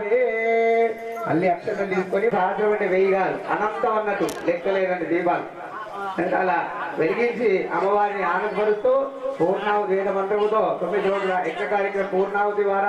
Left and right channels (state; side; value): identical; both; correlation 1.00